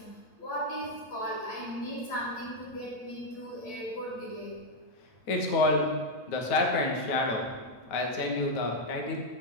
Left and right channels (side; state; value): right; late; 9.2 ms